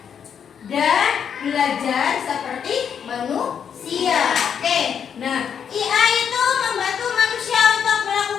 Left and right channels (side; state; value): right; quieter; 7.8 dB